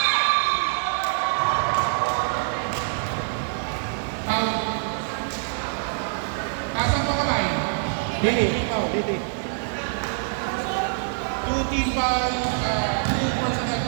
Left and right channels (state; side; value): silent; left; digital silence